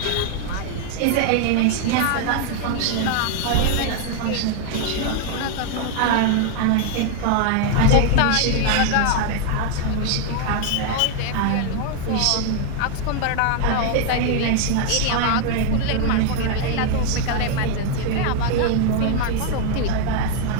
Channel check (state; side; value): different; both; correlation 0.00